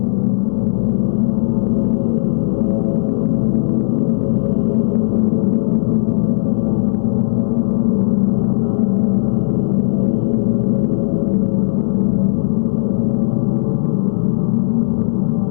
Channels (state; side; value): silent; right; digital silence